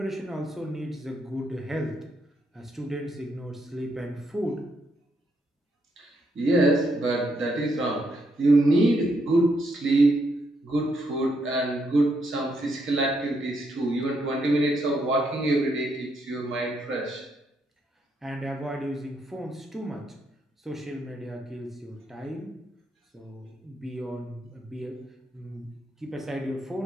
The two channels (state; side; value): normal; both; correlation 0.77